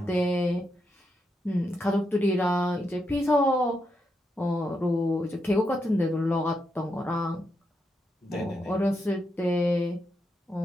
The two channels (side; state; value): both; normal; correlation 0.83